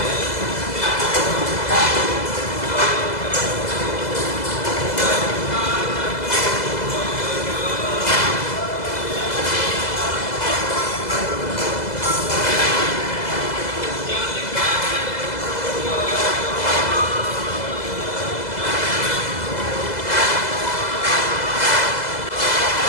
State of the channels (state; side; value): late; right; 2.0 ms